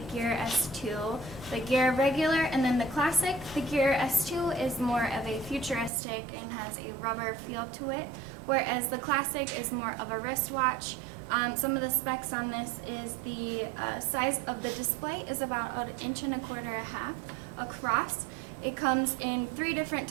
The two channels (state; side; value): drops out; left; at 5.9 s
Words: Gear S2, the Gear Regular and then the Classic. The Gear S2 is more of a futuristic and has a rubber feel to it, whereas the Classic is more of a wristwatch. Some of the specs on this is the size of the display is about 1.25 inches across. It comes in 3 different